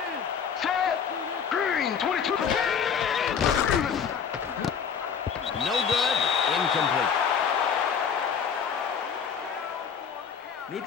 Set. Green. 22. No good. Incomplete.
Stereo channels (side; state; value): right; quieter; 7.0 dB